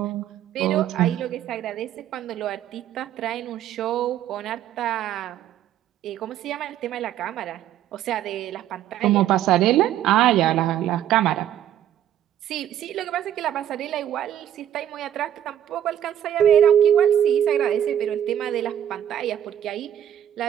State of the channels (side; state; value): left; quieter; 10.9 dB